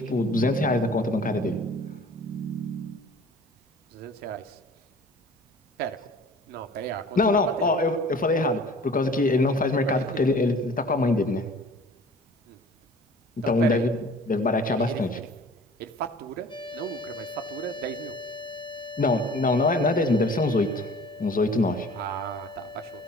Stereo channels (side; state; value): both; normal; correlation 0.47